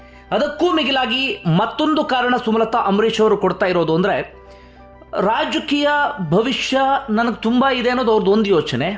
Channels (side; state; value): both; identical; correlation 1.00